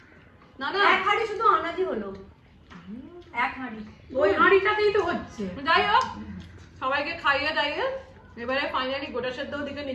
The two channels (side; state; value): both; identical; correlation 1.00